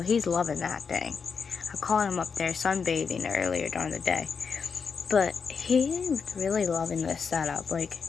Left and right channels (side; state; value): right; quieter; 5.8 dB